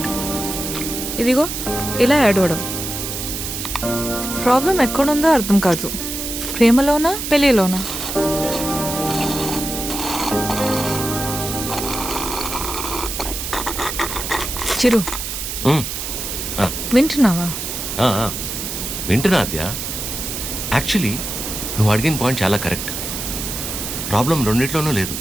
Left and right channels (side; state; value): right; noise; hiss, 5 dB below the sound